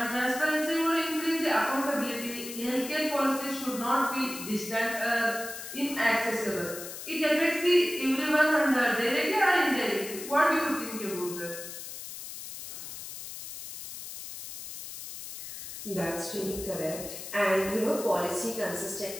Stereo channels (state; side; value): noise; left; hiss, 10 dB below the sound